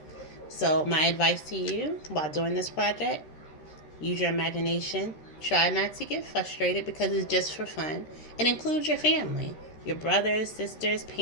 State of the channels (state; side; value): late; right; 13 ms